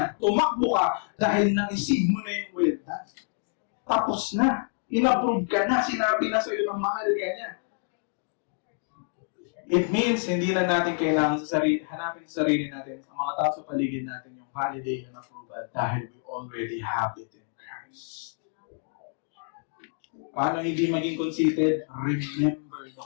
Tumakbo ka dahil naisig mo na yung well done. Tapos na. In-approve ka na. Sinabi na sa'yo ng mahal ka niya. It means, hindi na natin kailangan hanapin sa sarili natin, ang mga tao sa paligid natin, yung validation and approval dahil we already have it in Christ. Paano hindi maging conceited? Remember the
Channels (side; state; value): right; silent; 60 dB below the other